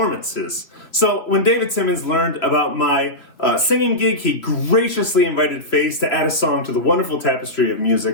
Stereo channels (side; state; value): right; late; 3.3 ms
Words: So when David Simmons learned about my singing gig, he graciously invited Face to add a song to the wonderful tapestry of